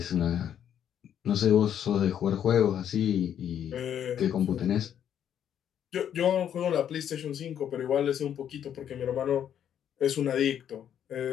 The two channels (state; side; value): quieter; right; 9.5 dB